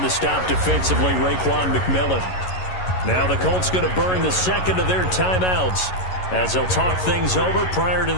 the stop defensively, Raekwon McMillan. Now the Colts going to burn the second of their timeouts as they'll talk things over prior to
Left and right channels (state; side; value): late; right; 11 ms